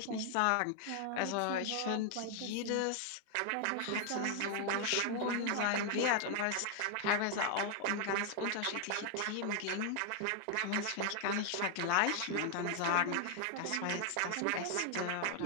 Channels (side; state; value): both; different; correlation 0.00